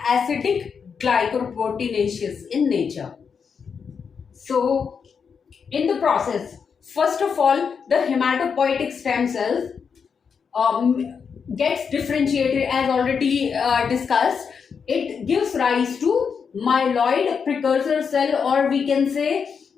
acidic glycoproteinaceous in nature. So in the process, first of all, the hematopoietic stem cells gets differentiated, as already discussed, it gives rise to myeloid precursor cell, or we can say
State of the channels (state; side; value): quieter; right; 6.2 dB